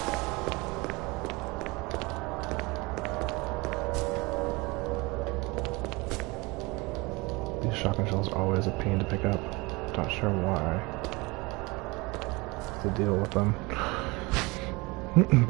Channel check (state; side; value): quieter; left; 24.7 dB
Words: These shotgun shells are always a pain to pick up. Not sure why. To deal with them.